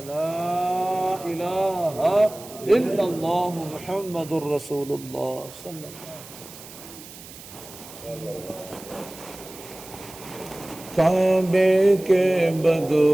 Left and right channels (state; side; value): noise; right; hiss, 17 dB below the sound